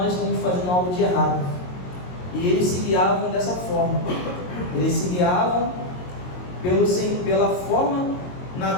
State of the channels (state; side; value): late; right; 22 ms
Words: estamos fazendo algo de errado, e eles se guiavam dessa forma. Eles se guiavam pela forma